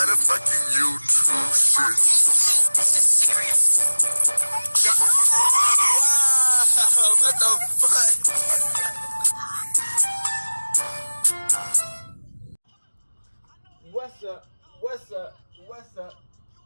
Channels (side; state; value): both; inverted; correlation -1.00